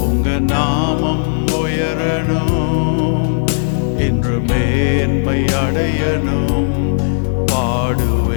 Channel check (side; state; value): right; silent; digital silence